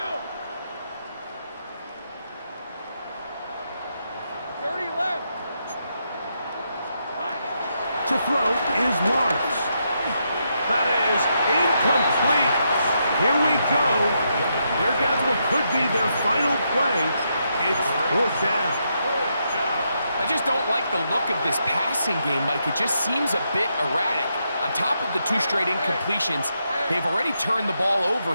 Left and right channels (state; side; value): inverted; both; correlation -0.80